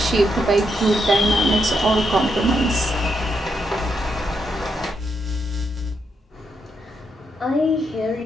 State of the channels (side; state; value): both; normal; correlation 0.80